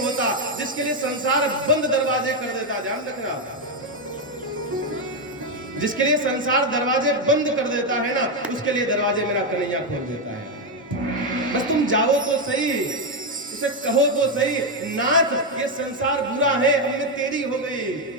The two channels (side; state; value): both; normal; correlation 0.05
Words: जिसके लिए संसार बंद दरवाजे कर देता, ध्यान रखना, जिसके लिए संसार दरवाजे बंद कर देता है ना, उसके लिए दरवाजे मेरा कन्हैया खोल देता है। बस तुम जाओ तो सही, उसे कहो तो सही, नाथ ये संसार बुरा है, हमने तेरी हो गई।